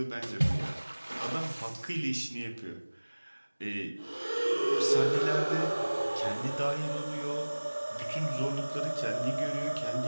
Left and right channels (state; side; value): inverted; both; correlation -1.00